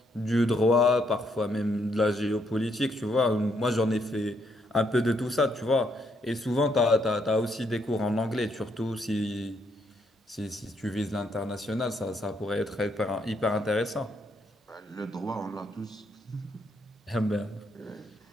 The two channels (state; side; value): normal; both; correlation 0.74